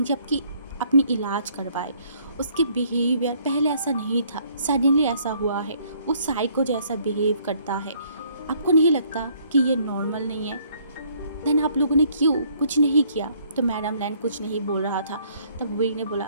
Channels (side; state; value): both; inverted; correlation -0.64